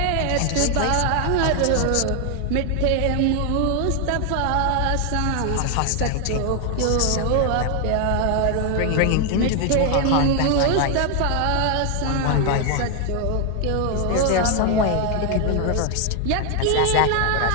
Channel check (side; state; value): both; different; correlation 0.00